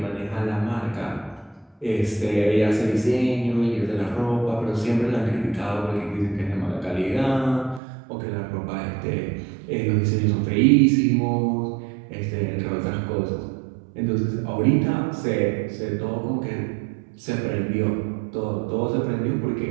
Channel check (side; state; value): left; drops out; at 7.8 s